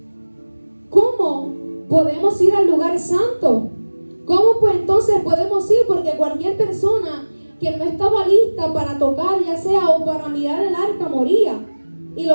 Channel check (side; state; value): both; inverted; correlation -1.00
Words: ¿cómo podemos ir al lugar santo? ¿Cómo pues entonces podemos ir? Porque cualquier persona que no estaba lista para tocar, ya sea o para mirar el arca, moría. Y